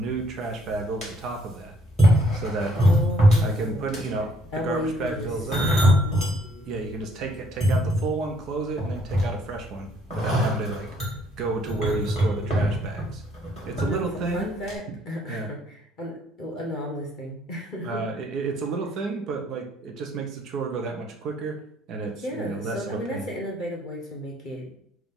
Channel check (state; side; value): normal; both; correlation 0.66